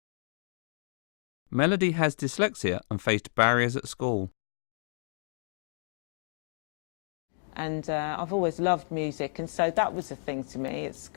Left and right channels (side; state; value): right; silent; digital silence